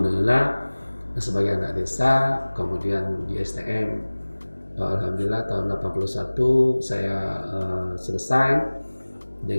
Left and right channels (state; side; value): inverted; both; correlation -1.00